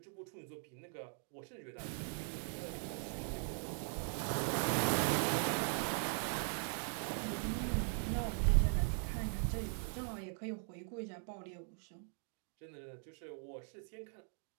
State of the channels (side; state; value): left; silent; 51 dB below the other